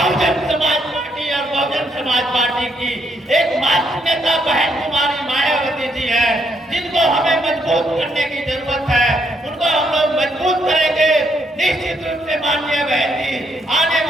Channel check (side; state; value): both; normal; correlation 0.74